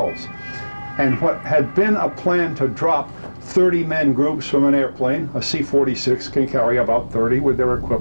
And what had been a plan to drop 30-man groups from an airplane, a C-46 can carry about 30 with their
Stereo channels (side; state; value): both; inverted; correlation -1.00